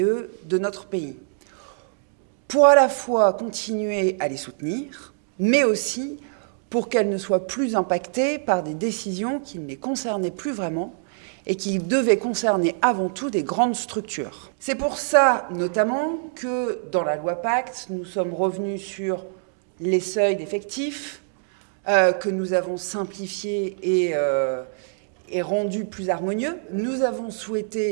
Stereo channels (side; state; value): left; silent; digital silence